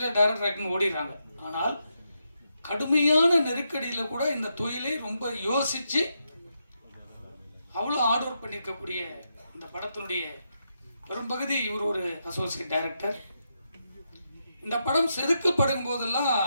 டைரக்டர் ஆக்டர்னு ஓடிடுறாங்க. ஆனால் கடுமையான நெருக்கடியில் கூட இந்த தொழிலை ரொம்ப யோசித்து அவ்வளோ ஹார்ட் ஒர்க் பண்ணியிருக்கக்கூடிய இந்த படத்தினுடைய பெரும்பகுதி இவர் ஒரு அசோசியேட் டைரக்டர். இந்த படம் செதுக்கப்படும் போதெல்லாம்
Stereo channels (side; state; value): both; inverted; correlation -0.83